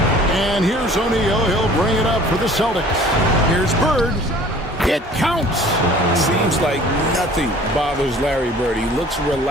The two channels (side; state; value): both; normal; correlation 0.50